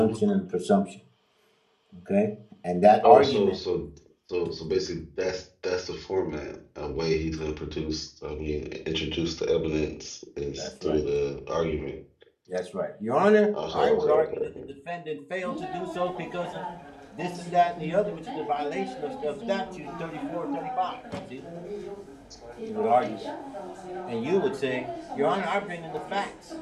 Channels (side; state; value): both; identical; correlation 1.00